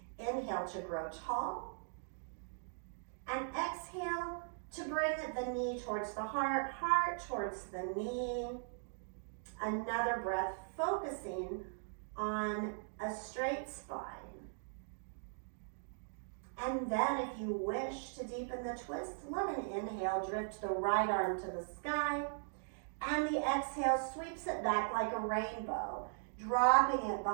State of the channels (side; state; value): left; silent; digital silence